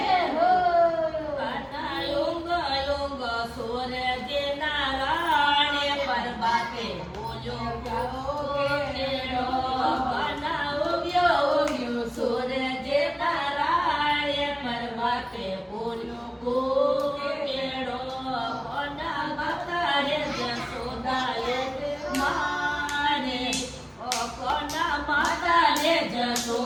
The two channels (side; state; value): both; identical; correlation 1.00